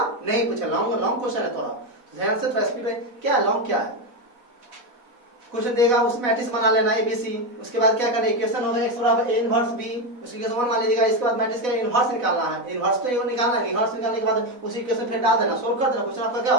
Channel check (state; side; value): late; left; 4.1 ms